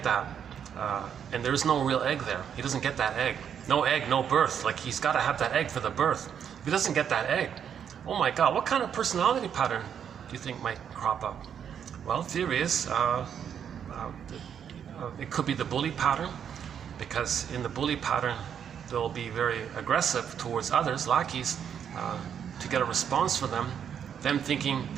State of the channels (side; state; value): left; quieter; 8.3 dB